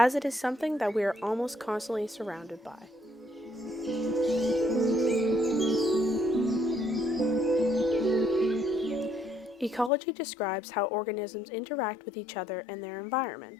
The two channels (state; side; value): drops out; right; at 9.9 s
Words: it is something that we are almost constantly surrounded by. Ecology describes how organisms interact with each other and their